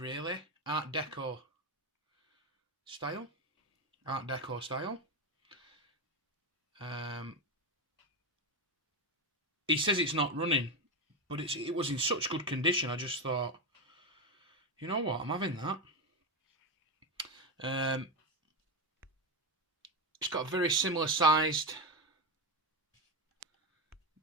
Art Deco style. He says it's not running, but it was in such good condition. I just thought, you know what, I'm having that. It's got a very similar sized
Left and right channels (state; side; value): normal; both; correlation 0.12